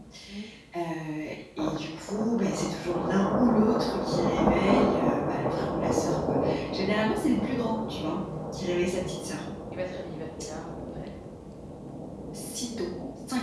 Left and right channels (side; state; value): both; identical; correlation 1.00